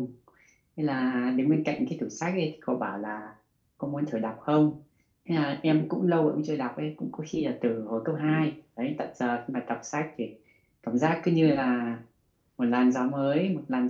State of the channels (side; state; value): both; identical; correlation 1.00